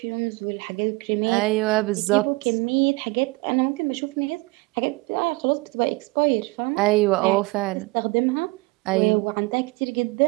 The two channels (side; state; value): left; quieter; 24.8 dB